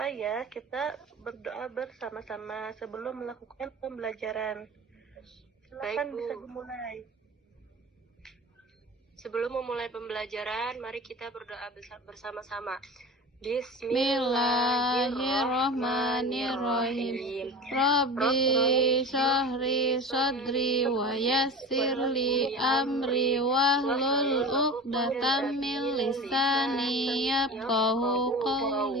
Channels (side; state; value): both; normal; correlation 0.33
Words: ya, kita berdoa bersama-sama sebelum melakukan pembelajaran. Silakan Baik, Bu. bisa dimulai. Sebelum memulai pembelajaran, mari kita berdoa bersama-sama. Bismillahirrahmanirrahim. Rabbi syahri sadri wa yassirli amri wahlul uqdatam min lisani yafqahu